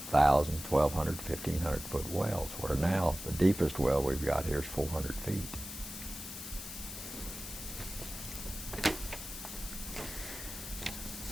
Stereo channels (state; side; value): noise; left; hiss, 9 dB below the sound